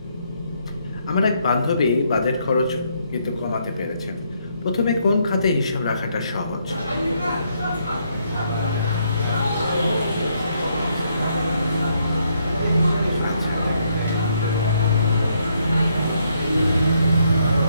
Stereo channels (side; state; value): both; inverted; correlation -0.73